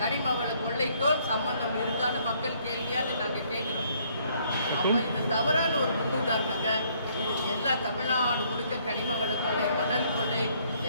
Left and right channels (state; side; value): inverted; both; correlation -0.65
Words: கனிம வள கொள்ளைக்கும் சம்பந்தம் இருக்கான்னு மக்கள் கேள்வியாக நாங்க கேட்கிறோம். அப்ப இந்த தவறான ஒரு முன்னுதாரணங்க. இது எல்லா தமிழ்நாடு முழுக்க கனிம வள கொள்ளை, மணல் கொள்ளை